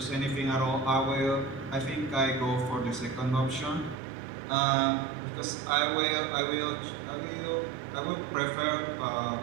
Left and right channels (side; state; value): left; drops out; at 4.0 s